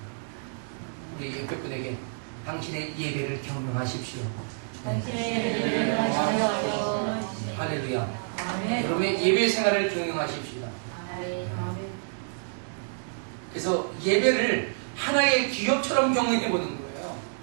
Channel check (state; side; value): silent; left; digital silence